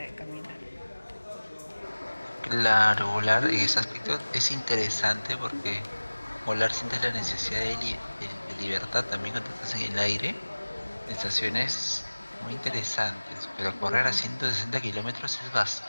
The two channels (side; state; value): both; inverted; correlation -1.00